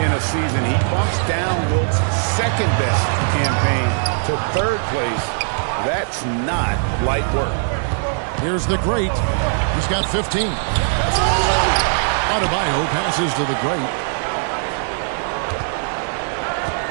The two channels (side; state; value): left; silent; digital silence